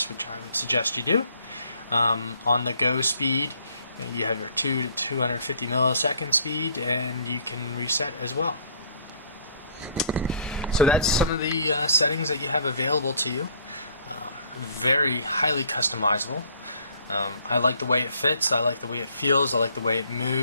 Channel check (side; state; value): both; inverted; correlation -0.58